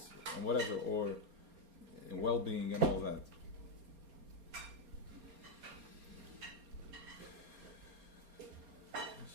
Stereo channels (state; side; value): late; left; 4.3 ms